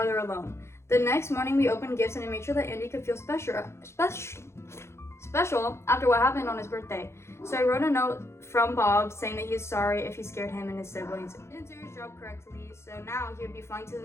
alone. The next morning, we opened gifts, and I made sure that Andy could feel special after what happened on his birthday. So I wrote a note from Bob saying that he is sorry if he scared him and his siblings. He didn't do his job correctly, so now he would be flying to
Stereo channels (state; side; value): late; right; 0.13 ms